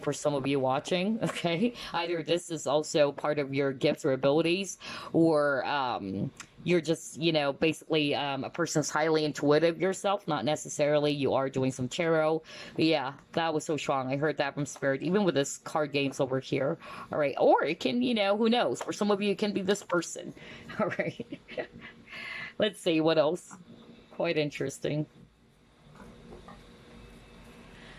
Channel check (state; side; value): identical; both; correlation 1.00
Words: for some of you watching, okay? Either this is also part of your gifts or abilities, or you're just, basically a person's highly intuitive yourself. Not necessarily you are doing some tarot. But yeah, that was so strong. I heard that from Spirit, even with this card games over here. All right. Or it can, who knows? For some of you, it can be this person. All right. Let's see what else. Quite interesting.